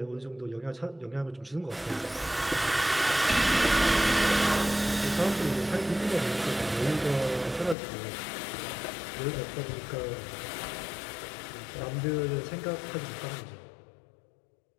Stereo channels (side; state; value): right; drops out; at 7.8 s